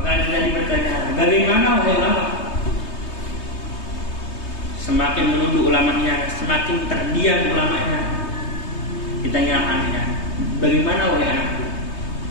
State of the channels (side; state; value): right; late; 3.2 ms